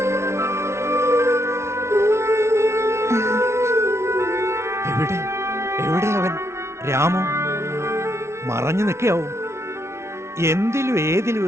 എവിടെ അവൻ? രാമു മറഞ്ഞു നിൽക്കാവും. എന്തിലും ഏതിലും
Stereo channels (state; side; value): late; left; 0.13 ms